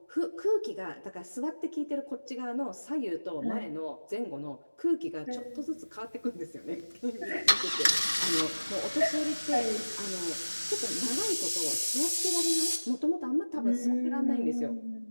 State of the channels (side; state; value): both; inverted; correlation -1.00